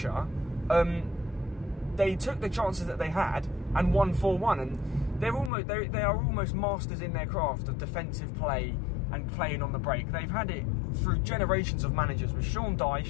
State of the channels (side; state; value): right; drops out; at 5.5 s